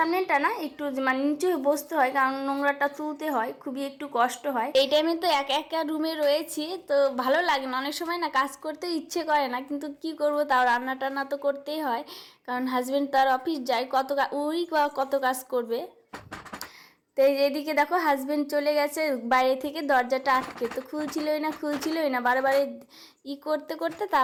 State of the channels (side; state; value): both; identical; correlation 1.00